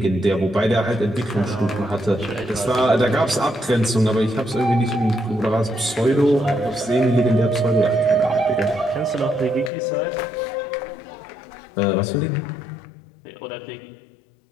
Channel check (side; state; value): right; drops out; at 9.7 s